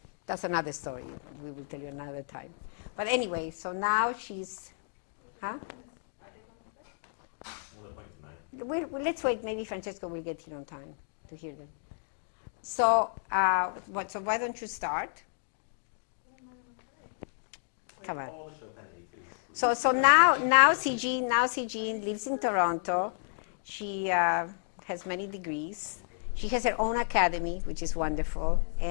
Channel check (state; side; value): silent; right; digital silence